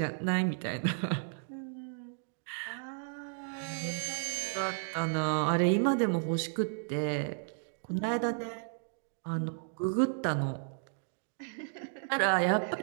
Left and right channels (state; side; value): silent; left; digital silence